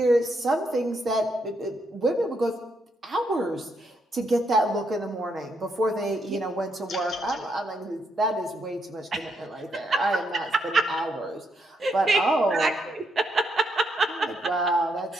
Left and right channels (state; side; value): normal; both; correlation 0.77